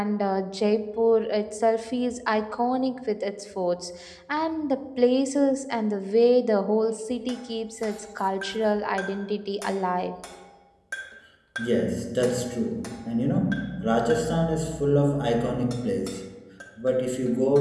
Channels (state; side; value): identical; both; correlation 1.00